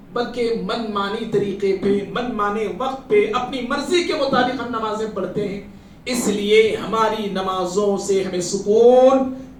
بلکہ من مانی طریقے پہ، من مانے وقت پہ، اپنی مرضی کے مطابق ہم نمازیں پڑھتے ہیں، اس لیے ہماری نمازوں سے ہمیں سکون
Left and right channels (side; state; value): both; identical; correlation 1.00